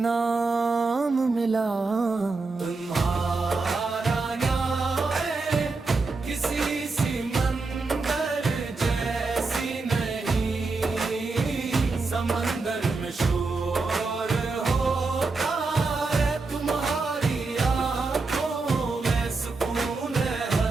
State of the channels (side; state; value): left; quieter; 3.8 dB